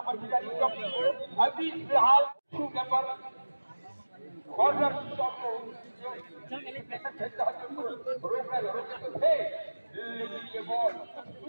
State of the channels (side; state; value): both; inverted; correlation -1.00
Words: की इनकम अभी फिलहाल पर कॉर्नर लेकिन ये बॉल